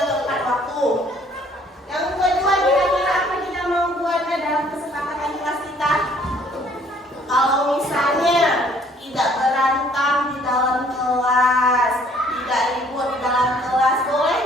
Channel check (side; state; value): both; normal; correlation 0.60